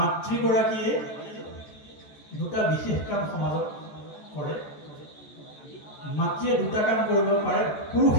দুটা বিশেষ কাম সমাজত কৰে। মাতৃয়ে দুটা কাম কৰিব পাৰে,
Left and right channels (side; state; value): right; late; 14 ms